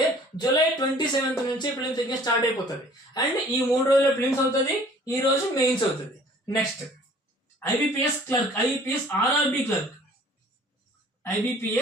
జూలై 27th నుంచి ప్రిలిమ్స్ ఎగ్జామ్ స్టార్ట్ అయిపోతుంది. అండ్ ఈ 3 రోజుల్లో ప్రిలిమ్స్ అవుతుంది, ఈ రోజు మెయిన్స్ అవుతుంది. Next IBPS clerk, IBPS RRB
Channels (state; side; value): normal; both; correlation 0.52